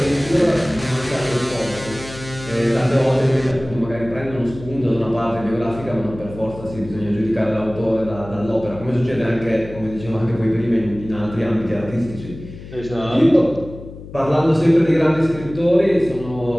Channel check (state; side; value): noise; left; hum, 15 dB below the sound